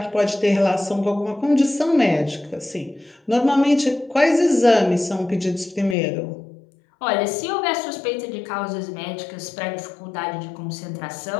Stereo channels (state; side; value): drops out; right; at 6.0 s